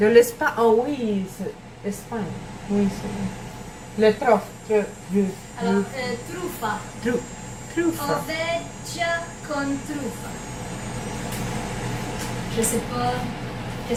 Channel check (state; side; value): identical; both; correlation 1.00